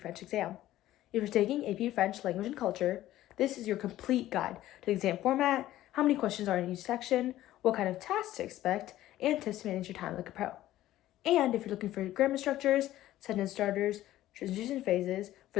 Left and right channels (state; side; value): quieter; right; 14.3 dB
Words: French exam. If you're taking AP French Language and Culture, this is your complete guide to the exam format, how many questions are in each section, what kind of tasks to expect, and tips to manage your time like a pro. And if you're looking for grammar structures, sentence starters, transition phases